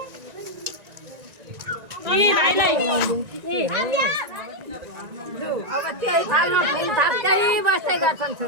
अब त्यही थालमा फुल थाप्दै बस्दै गर्छन्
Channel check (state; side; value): late; left; 1.9 ms